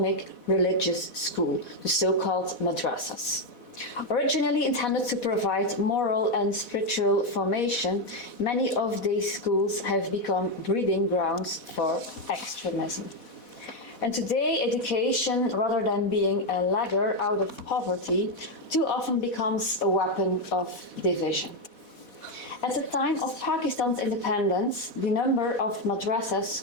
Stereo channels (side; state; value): right; late; 4.1 ms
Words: religious school, the so-called madrasas. Originally intended to provide moral and spiritual formation, many of these schools have become breeding grounds for extremism. And today, education, rather than being a ladder out of poverty, too often becomes a weapon of division. At the time of Pakistan's independence, the number of